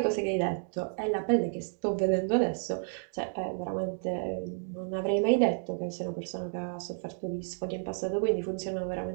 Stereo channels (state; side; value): silent; left; digital silence